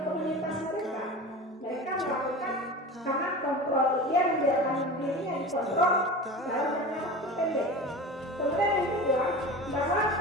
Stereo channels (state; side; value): normal; both; correlation 0.32